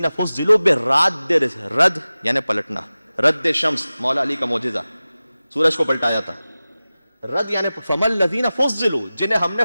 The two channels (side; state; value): both; inverted; correlation -0.96